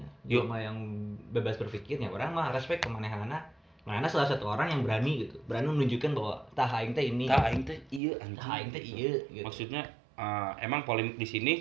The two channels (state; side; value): drops out; left; at 8.0 s